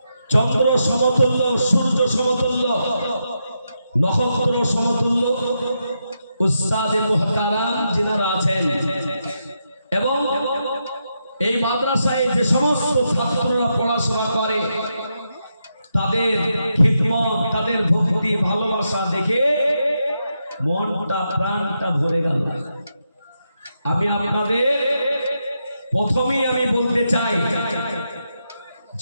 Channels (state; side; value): inverted; both; correlation -0.84